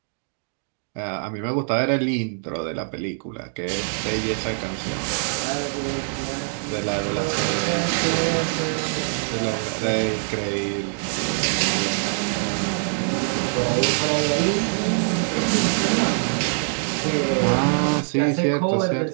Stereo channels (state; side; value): silent; left; digital silence